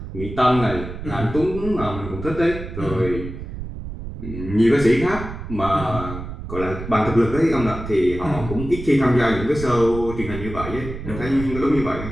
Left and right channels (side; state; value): right; noise; rumble, 9 dB below the sound